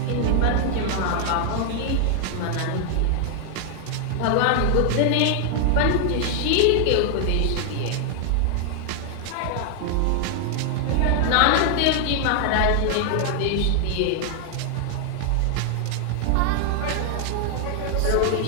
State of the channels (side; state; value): both; different; correlation 0.00